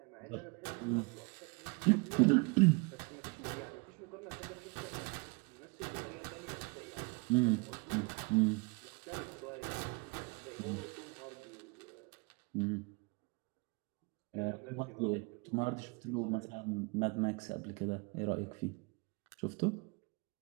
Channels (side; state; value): left; quieter; 29.7 dB